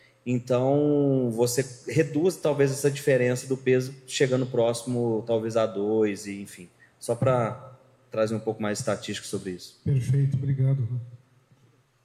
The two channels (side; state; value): both; identical; correlation 1.00